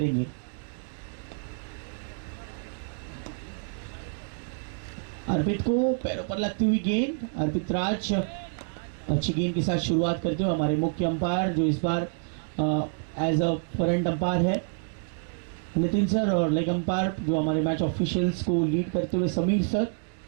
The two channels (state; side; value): silent; left; 59 dB below the other